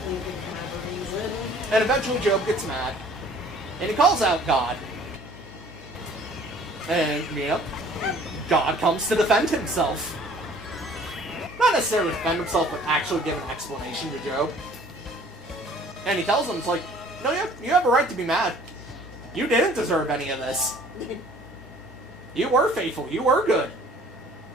didn't have a reason. And eventually Job gets mad, and he calls out God. And, you know, God comes to defend himself. Not necessarily defend himself, but actually give an explanation to Job. And he tells him, it's like, no, you have a right to be mad. You didn't deserve any of this. You were faithful. You were good.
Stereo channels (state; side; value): normal; both; correlation 0.53